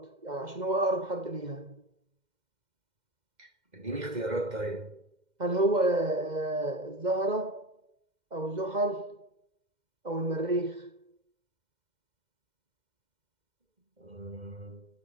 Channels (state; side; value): late; left; 2.1 ms